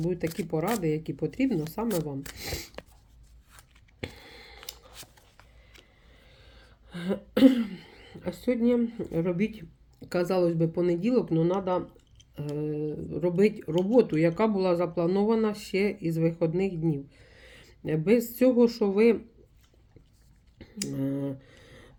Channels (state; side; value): identical; both; correlation 1.00